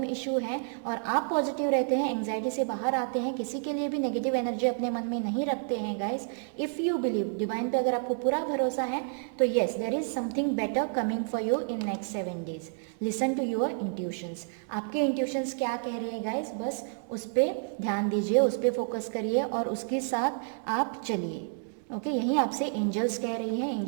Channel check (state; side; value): silent; left; 58 dB below the other